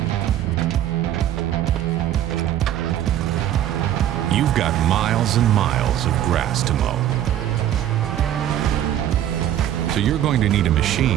You've got miles and miles of grass to mow. So you're going to need a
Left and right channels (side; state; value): left; quieter; 11.5 dB